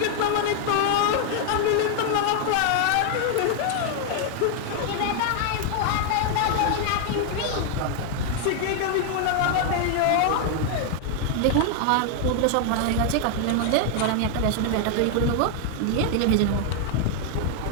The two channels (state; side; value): different; both; correlation 0.00